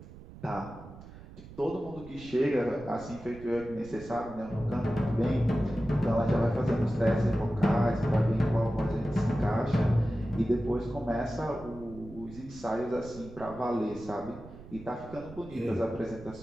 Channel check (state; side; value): noise; right; rumble, 16 dB below the sound